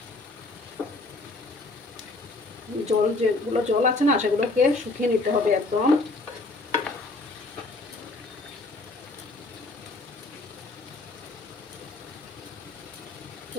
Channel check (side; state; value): right; quieter; 3.2 dB